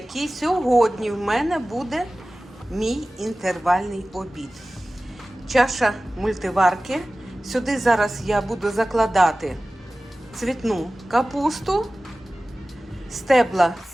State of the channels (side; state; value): both; normal; correlation 0.96